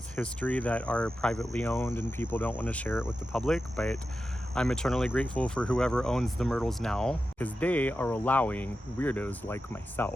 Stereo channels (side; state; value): both; normal; correlation 0.91